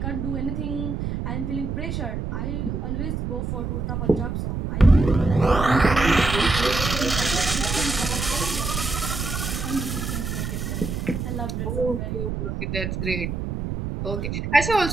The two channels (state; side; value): noise; right; rumble, 3 dB below the sound